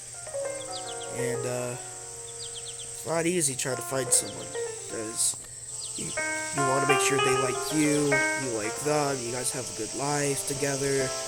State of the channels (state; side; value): identical; both; correlation 1.00